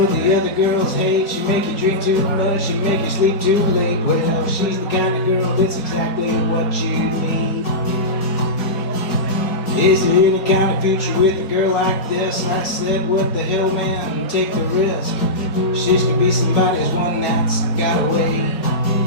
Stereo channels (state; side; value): late; right; 4.7 ms